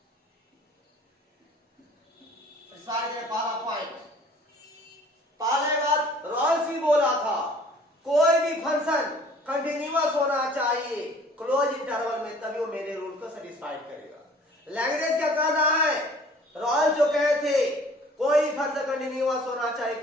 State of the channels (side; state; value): both; normal; correlation 0.52